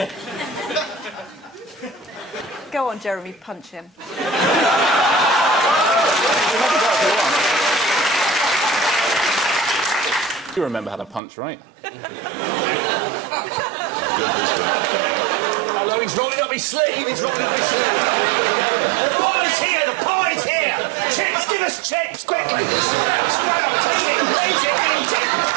Go on, Jeremy, punch him. You remember how to punch, right? Hello, he's rolling up his sleeve. He's rolling up his sleeve. The pie's here. The pie's here. Chips, give us chips, quick. Sprout, sprout. Eat it, eat it, eat it.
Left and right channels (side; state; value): left; drops out; at 11.2 s